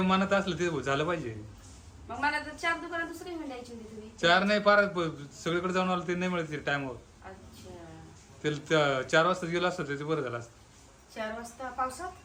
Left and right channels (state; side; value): identical; both; correlation 1.00